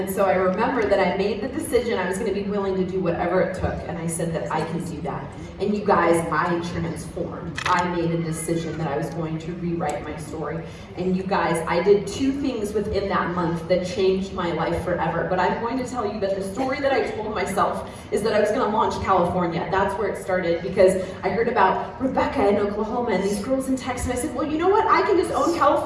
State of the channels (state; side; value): identical; both; correlation 1.00